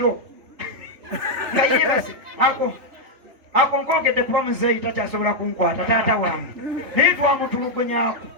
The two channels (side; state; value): left; late; 3.4 ms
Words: nga yebase ako nkogedde kuba muzeeyi takyasobola kunkwata taata wange naye twamutulugunyaako